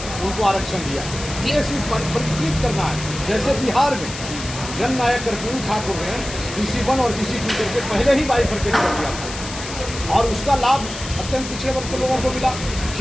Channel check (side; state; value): left; noise; hiss, 10 dB below the sound